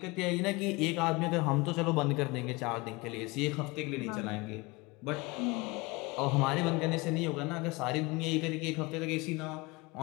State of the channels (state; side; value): quieter; right; 24.4 dB